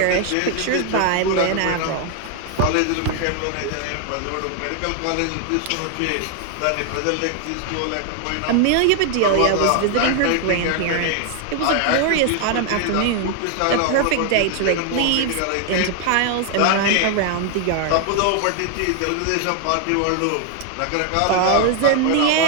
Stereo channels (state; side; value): different; both; correlation 0.00